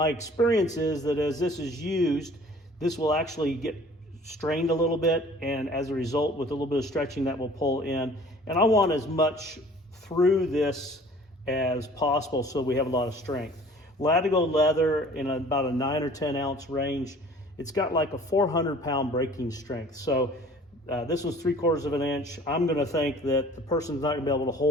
experience is that as this is used, this will actually get strained a little bit, and as a result, with a little bit of stretching, that will pull in. And I want as much through this as possible so we have a lot of strength. Latigo leather in about a 9 or 10 ounce range, it's got like a 400-pound breaking strength. So this was 3/4 of an inch. I'm going to think that the person's not going to be able to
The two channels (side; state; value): both; normal; correlation 0.50